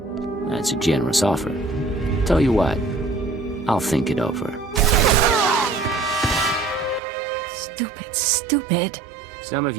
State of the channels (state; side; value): drops out; left; at 7.0 s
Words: That's a generous offer. Tell you what, I'll think it over. Stupid. Some of